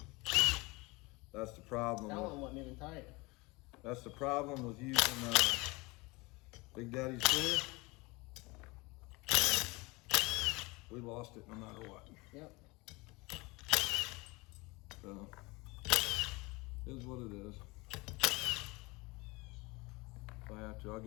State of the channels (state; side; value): quieter; right; 24.5 dB